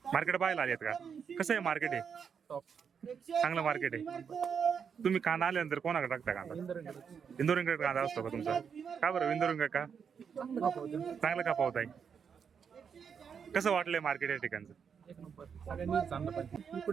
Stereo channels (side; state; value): left; quieter; 6.9 dB